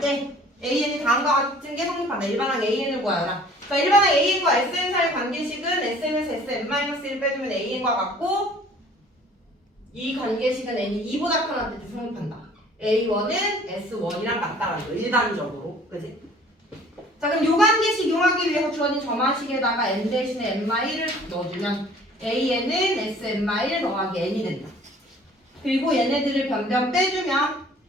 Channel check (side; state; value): both; normal; correlation 0.52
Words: AN이 다음과 같은 게 성립한다. 일반항 AN을 구하라. 자, 일반항 AN과 SN 사이 관계식은 SN에서 SN-1을 빼주면 AN과 같고 이 관계식은 N이 2보다 커할 때 성립한다. A1은 S1이랑 같다라는 거 일반적으로. 그지? 자, 그럼 요 관계식 이용하기 위해서 주어진 점화식에다가 N 대신에 N-1을 넣어주면 AN은 SN-1 더하기 N이 된다. 그리고 얘네들을 변변 빼주면